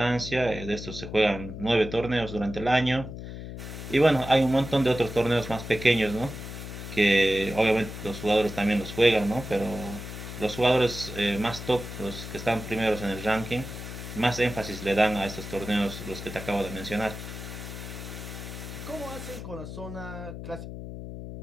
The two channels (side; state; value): left; noise; hum, 9 dB below the sound